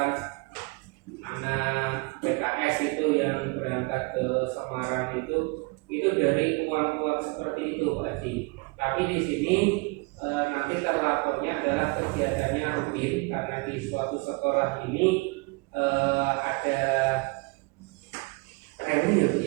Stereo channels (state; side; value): quieter; left; 28.4 dB